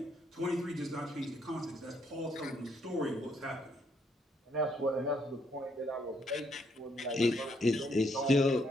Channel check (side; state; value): both; normal; correlation 0.72